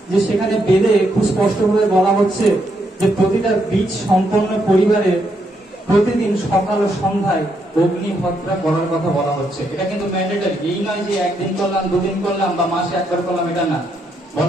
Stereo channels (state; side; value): normal; both; correlation 0.77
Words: যে সেখানে বেদে খুব স্পষ্টভাবে বলা হচ্ছে যে প্রতিটা বীজ সম্পন্ন পরিবারে প্রতিদিন সকাল ও সন্ধ্যায় অগ্নিহত্যা করার কথা বলা হচ্ছে। এটা কিন্তু ম্যান্ডেটরি, এই নয় যে একদিন করলাম, দুদিন করলাম বা মাসে একবার করলাম, এটা না।